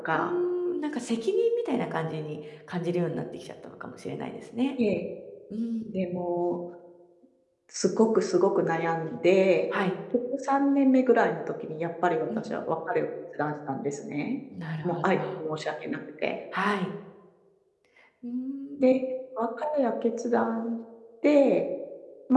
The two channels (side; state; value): both; identical; correlation 1.00